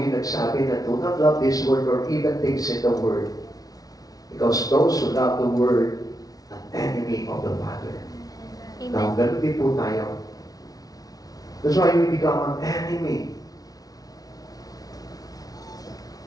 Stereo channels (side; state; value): right; late; 0.18 ms